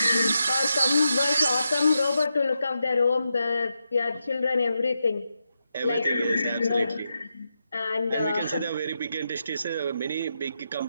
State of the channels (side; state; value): both; inverted; correlation -0.85